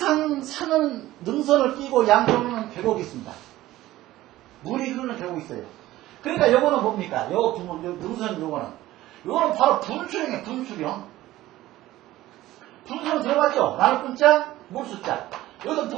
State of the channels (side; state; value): left; quieter; 15.9 dB